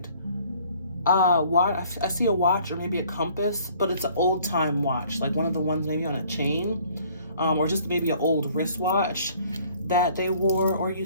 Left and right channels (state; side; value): inverted; both; correlation -0.57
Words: I see a watch or maybe a compass, but it's an old time watch, like one of the ones maybe on a chain, or just maybe an old wristwatch that they wore or